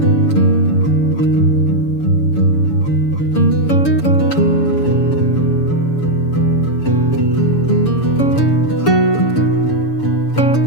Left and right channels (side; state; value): right; late; 6.9 ms